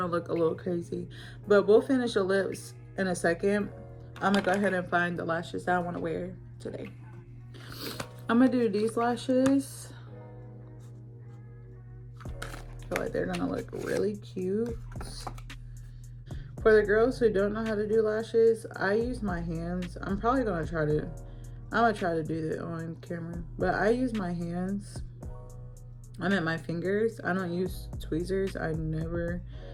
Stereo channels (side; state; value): both; identical; correlation 1.00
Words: look a little crazy. But we'll finish the lips in a second. I'm gonna go ahead and find the lashes that I wanna wear today. I'm gonna do these lashes. I feel like they're gonna look really cute. For the girls who don't know how to do lashes, I use my hands. I'm gonna try to do that on camera, but I use my hands. I meant my fingers. I don't use tweezers. I never,